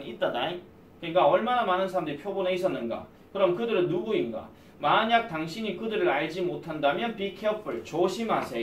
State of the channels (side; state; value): both; identical; correlation 1.00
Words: 있다다. 그러니까 얼마나 많은 사람들이 표본에 있었는가? 그럼 그들은 누구인가? 만약 당신이 그들을 알지 못한다면 be careful